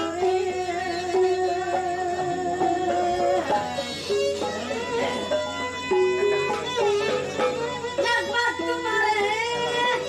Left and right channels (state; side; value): identical; both; correlation 1.00